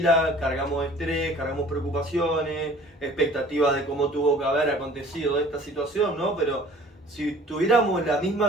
cargamos estrés, cargamos preocupaciones, expectativas de cómo tuvo que haber acontecido esta situación, ¿no? Pero si tuviéramos la misma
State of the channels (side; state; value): both; normal; correlation 0.50